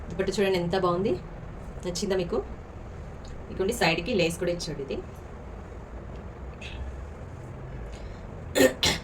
చూడండి ఎంత బాగుంది, నచ్చిందా మీకు? ఇదిగోండి సైడ్కి లేస్ కూడా ఇచ్చాడు. ఇది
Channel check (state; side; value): identical; both; correlation 1.00